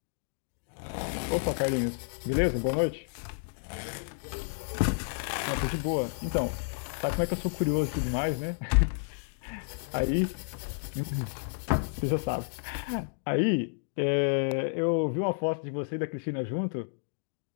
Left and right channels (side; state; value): right; silent; digital silence